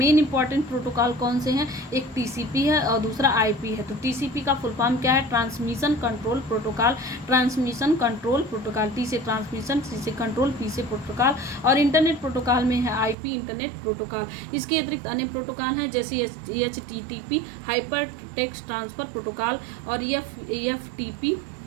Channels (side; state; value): left; drops out; at 13.2 s